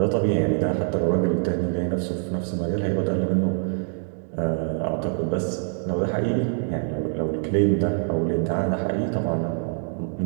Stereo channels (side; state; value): left; silent; 62 dB below the other